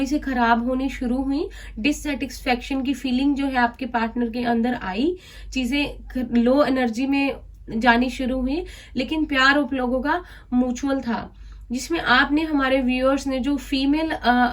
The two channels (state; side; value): identical; both; correlation 1.00